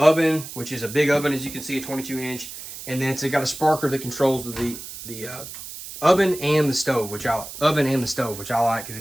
which is a big oven, as you can see, a 22-inch. And then it's got a sparker that controls the oven and the stove, which I like,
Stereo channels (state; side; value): noise; right; hiss, 12 dB below the sound